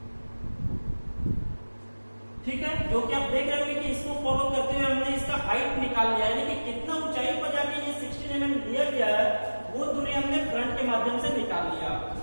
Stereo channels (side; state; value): both; inverted; correlation -1.00